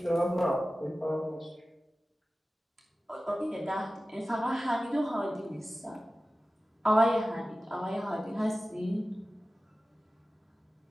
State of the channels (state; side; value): normal; both; correlation 0.96